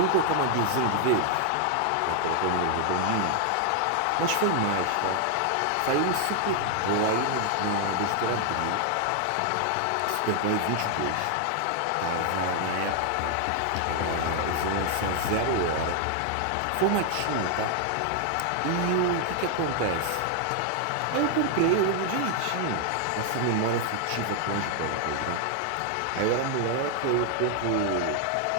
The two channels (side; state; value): both; different; correlation 0.00